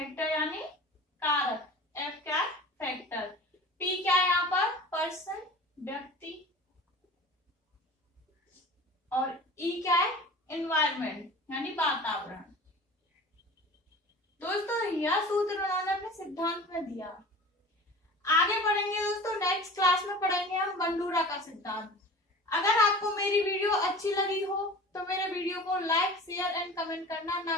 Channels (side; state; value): both; normal; correlation 0.39